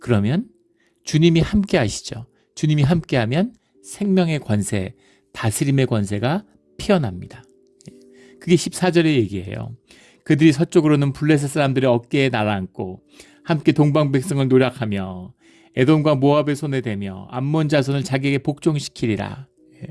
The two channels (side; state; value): both; identical; correlation 1.00